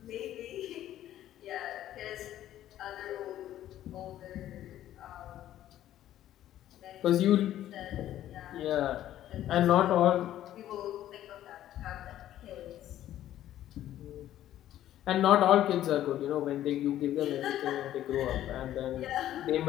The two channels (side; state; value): right; quieter; 12.6 dB